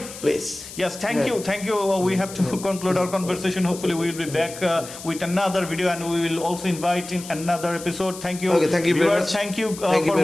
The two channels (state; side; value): noise; left; hiss, 13 dB below the sound